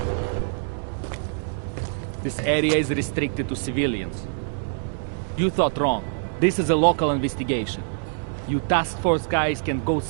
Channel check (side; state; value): left; silent; digital silence